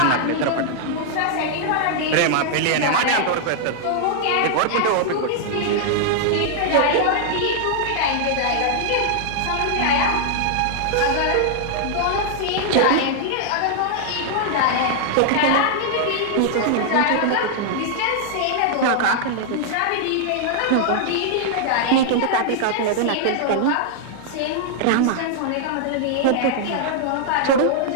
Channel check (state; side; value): different; both; correlation -0.01